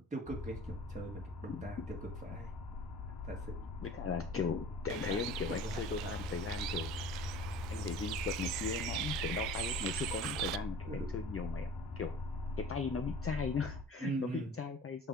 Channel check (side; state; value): both; normal; correlation 0.43